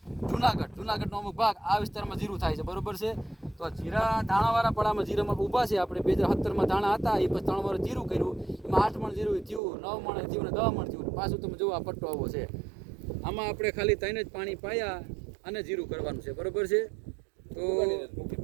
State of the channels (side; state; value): left; drops out; at 9.6 s